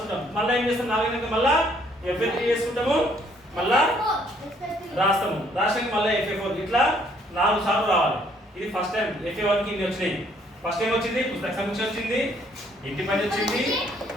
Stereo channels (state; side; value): normal; both; correlation 0.65